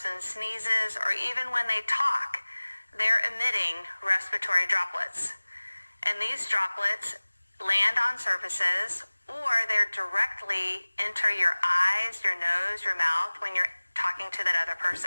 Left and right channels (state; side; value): inverted; both; correlation -1.00